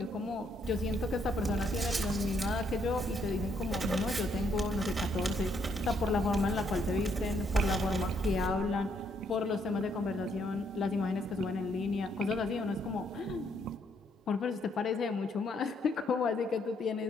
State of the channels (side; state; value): both; normal; correlation 0.72